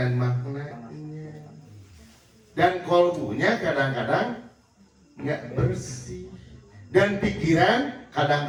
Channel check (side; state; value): both; identical; correlation 1.00